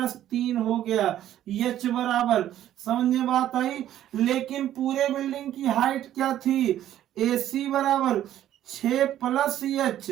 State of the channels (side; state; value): left; quieter; 12.0 dB